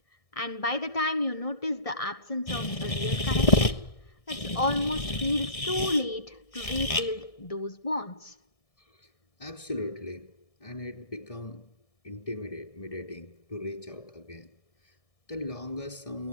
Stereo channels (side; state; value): right; late; 1.6 ms